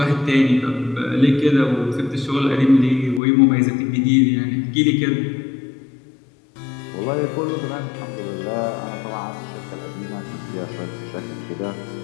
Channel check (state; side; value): drops out; right; at 3.2 s